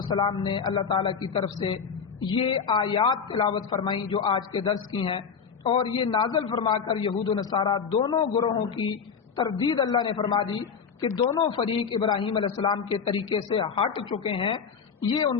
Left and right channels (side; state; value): right; quieter; 6.3 dB